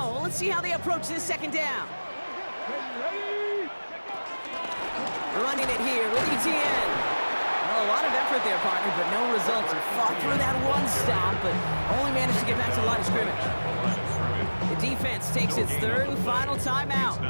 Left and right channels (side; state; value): both; inverted; correlation -1.00